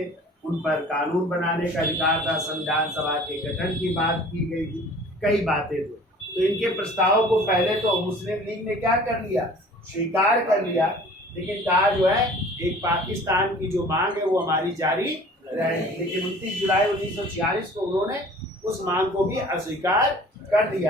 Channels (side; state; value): both; normal; correlation 0.47